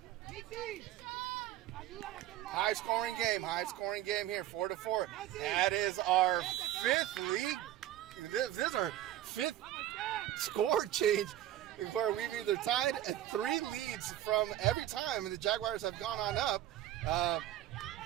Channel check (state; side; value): quieter; left; 13.3 dB